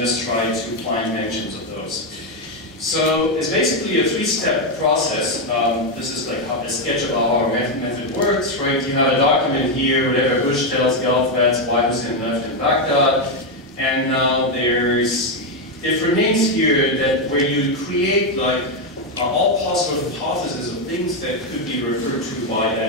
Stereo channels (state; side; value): normal; both; correlation 0.05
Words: try to find mentions of those. So it's basically a three-step process. This is like how the sketch of how our method works, right? You have a document here, whatever Bush tells Gulf, that's why Hussein left in Baghdad. And now there's different names here that where you create like all possible hypotheses of things that could be referred to by